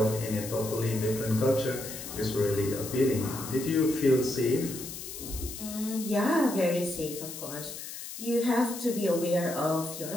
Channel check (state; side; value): noise; left; hiss, 10 dB below the sound